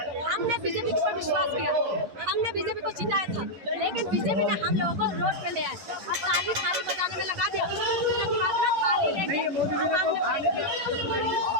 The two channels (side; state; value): left; late; 11 ms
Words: हमने बीजेपी के ऊपर विश्वास किया, हमने बीजेपी को जिताया था, लेकिन बीजेपी ने हम लोगों को रोड पे ले आए और ताली थाली बजाने में लगा दिया, उसके बाद ना थाली लेके हम आगे